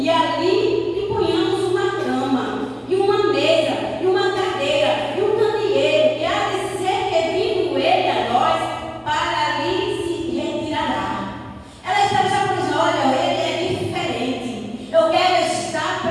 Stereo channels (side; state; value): both; identical; correlation 1.00